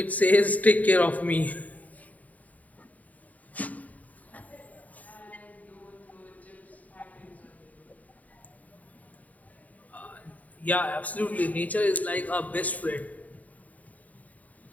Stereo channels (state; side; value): late; right; 0.073 ms